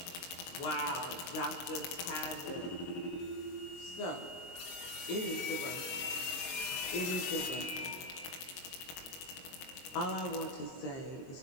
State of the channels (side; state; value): right; late; 23 ms